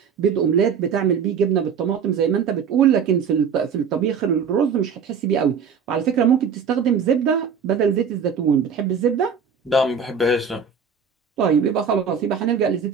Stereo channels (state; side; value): quieter; left; 6.4 dB